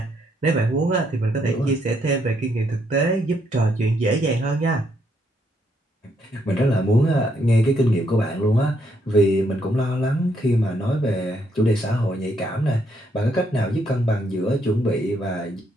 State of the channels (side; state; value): both; normal; correlation 0.74